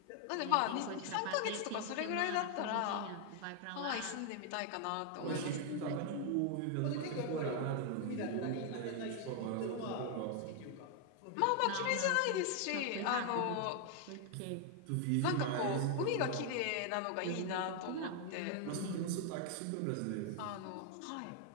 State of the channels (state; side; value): different; both; correlation 0.00